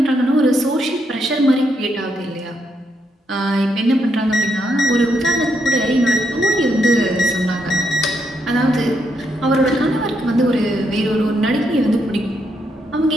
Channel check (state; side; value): normal; both; correlation 0.78